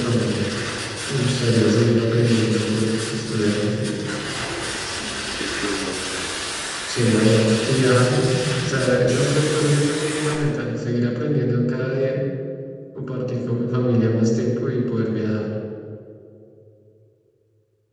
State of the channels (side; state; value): both; identical; correlation 1.00